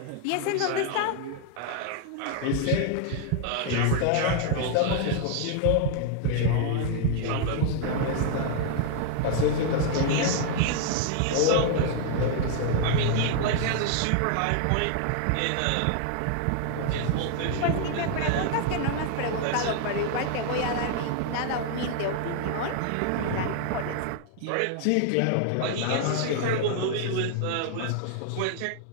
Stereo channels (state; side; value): different; both; correlation 0.00